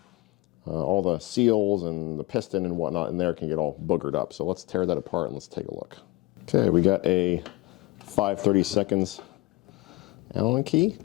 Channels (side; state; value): right; quieter; 20.2 dB